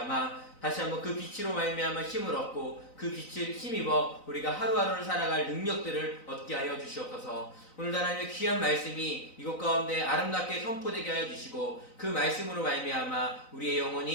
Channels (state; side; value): late; right; 3.9 ms